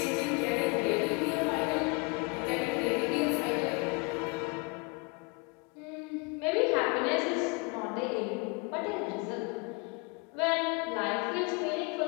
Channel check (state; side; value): quieter; right; 30.4 dB